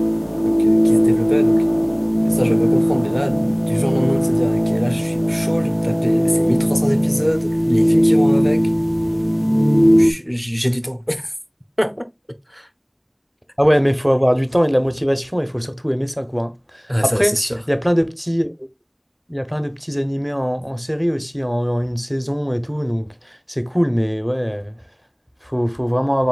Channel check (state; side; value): identical; both; correlation 1.00